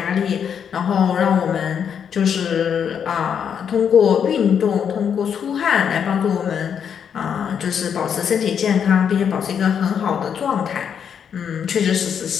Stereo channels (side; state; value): right; quieter; 7.8 dB